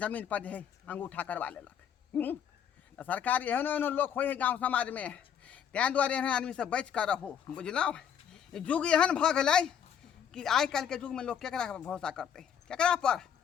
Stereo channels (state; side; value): quieter; right; 8.5 dB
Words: जमीन पर जे अंगूठा करवा लेलक तो सरकार एहनो एहनो लोग हो गाँव समाज में तैं दुआरे एहन आदमी से बच कर रहो बुझलौ युग एहन भ गेलै कि आइ काल्हि के युग में लोग केकरा पर भरोसा करते केकरा पर